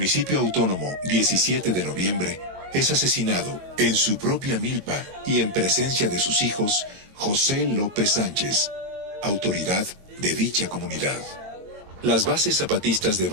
autónomo 17 de noviembre es asesinado en su propia milpa y en presencia de sus hijos José López Sánchez, autoridad de dicha comunidad. Las bases zapatistas de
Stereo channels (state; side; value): late; left; 22 ms